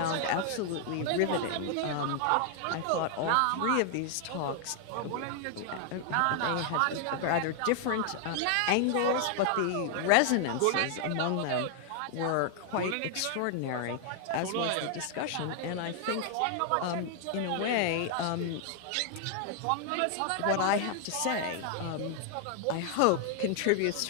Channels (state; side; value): different; both; correlation 0.00